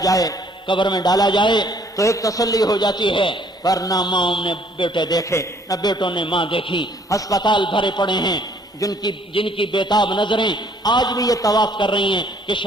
جائے، قبر میں ڈالا جائے تو ایک تسلی ہو جاتی ہے، پر نہ ماں نے بیٹے دیکھے نہ بیٹوں نے ماں دیکھی، ہسپتال بھرے پڑے ہیں، جن کی بےتاب نظریں آج بھی یہ طواف کر رہی ہیں کہ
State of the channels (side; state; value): both; normal; correlation 0.62